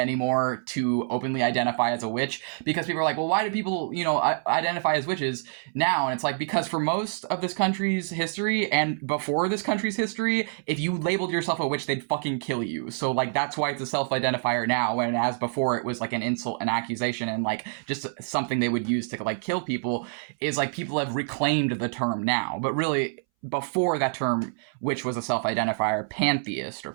to openly identify as a witch, because people are like, well, why do people, identify as witches now? And it's like, because for most of this country's history and before this country's history, if you labeled yourself a witch, they'd fucking kill you. So, like, that's why it's a self-identifier now, and as before it was like an insult, an accusation, and, like, just something they would use to, like, kill people. Is like, people have reclaimed the term now, but really, before that term, which was a self-identifier, pantheist or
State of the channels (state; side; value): silent; left; 60 dB below the other